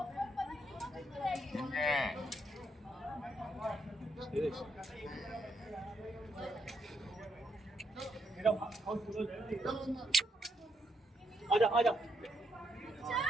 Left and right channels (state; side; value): normal; both; correlation 0.78